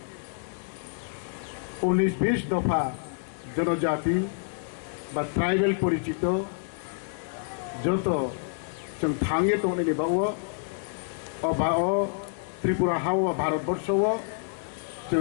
19-20 दफा जनजाति बा ट्राइबल परिचित जो जों थांगे तो त्रिपुरा हाव भारतवर्ष जो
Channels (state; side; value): silent; right; digital silence